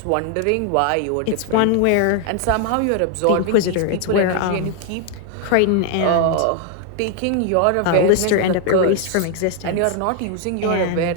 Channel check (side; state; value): both; different; correlation 0.00